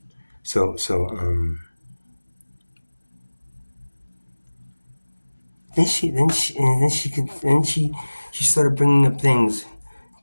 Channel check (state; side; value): inverted; both; correlation -1.00